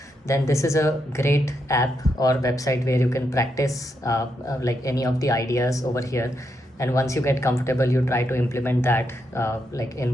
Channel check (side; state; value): both; normal; correlation 0.81